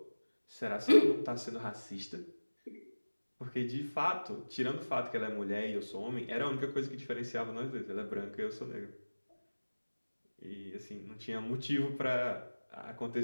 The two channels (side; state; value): both; inverted; correlation -1.00